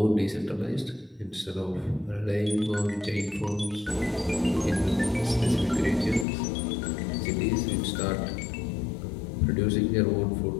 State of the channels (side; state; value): right; drops out; at 6.2 s